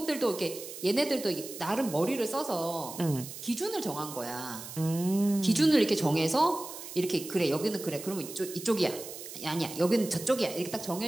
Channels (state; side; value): noise; right; hiss, 11 dB below the sound